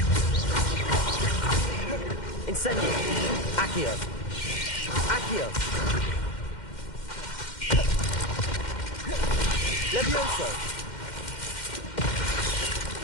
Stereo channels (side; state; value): right; late; 2.1 ms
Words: Incendio! Accio! Accio! Levioso!